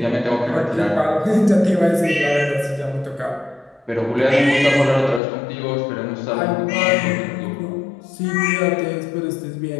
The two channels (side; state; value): right; drops out; at 5.2 s